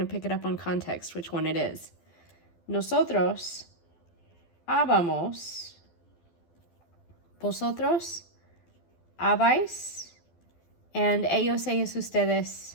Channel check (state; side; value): late; right; 12 ms